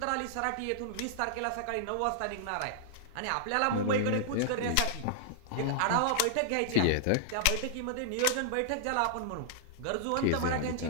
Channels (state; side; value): different; both; correlation -0.01